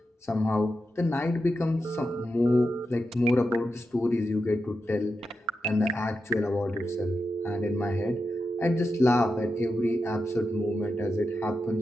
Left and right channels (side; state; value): both; normal; correlation 0.88